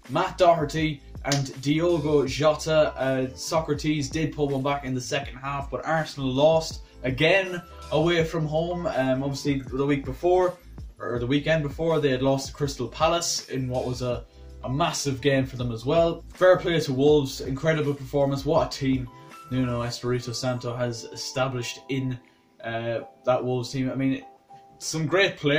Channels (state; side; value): identical; both; correlation 1.00